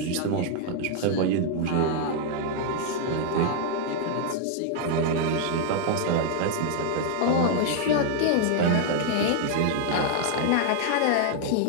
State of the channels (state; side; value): different; both; correlation 0.00